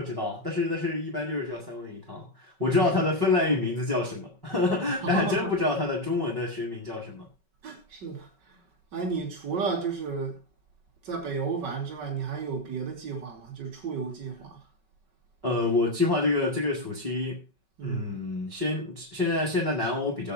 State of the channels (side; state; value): left; late; 5.3 ms